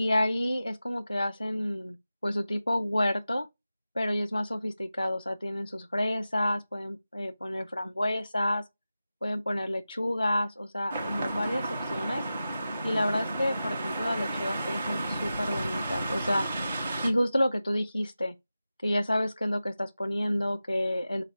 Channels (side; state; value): both; inverted; correlation -0.93